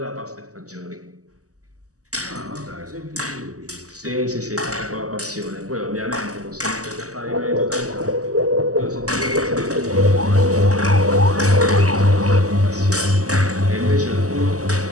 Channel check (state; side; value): late; left; 0.66 ms